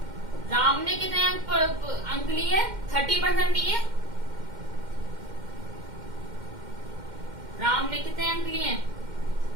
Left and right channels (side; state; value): left; late; 2.1 ms